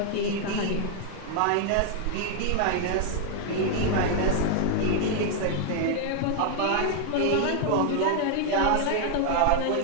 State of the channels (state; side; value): different; both; correlation 0.00